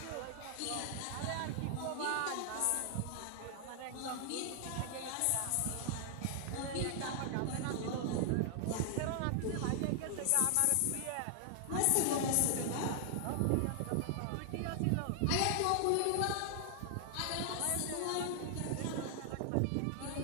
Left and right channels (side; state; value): both; different; correlation 0.00